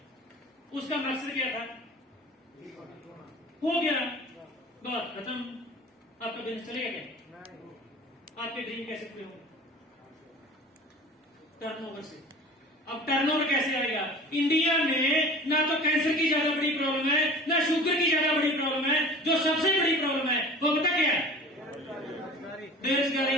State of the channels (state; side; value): normal; both; correlation 0.40